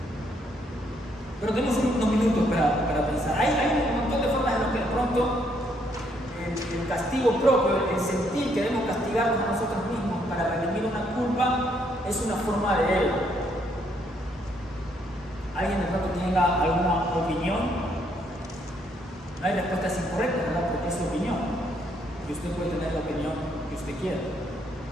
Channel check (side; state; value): both; normal; correlation 0.71